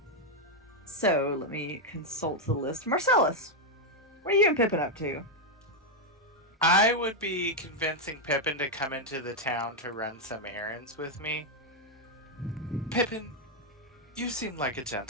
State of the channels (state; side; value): normal; both; correlation 0.01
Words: So, let me consult the list. Marcellus, what are you and Pippin up to? I would be convincing Pippin to come into the town to run some errands with me. Pippin, you seem like a